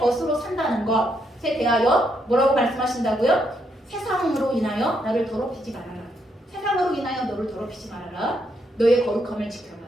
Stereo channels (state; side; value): normal; both; correlation 0.77